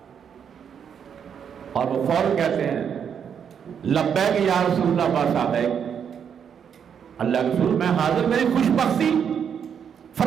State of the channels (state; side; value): quieter; left; 7.7 dB